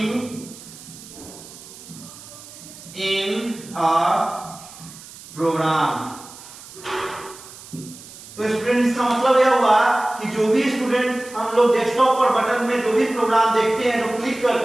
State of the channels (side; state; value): right; noise; hiss, 17 dB below the sound